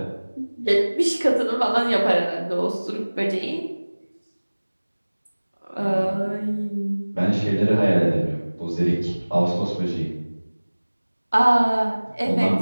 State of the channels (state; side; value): inverted; both; correlation -1.00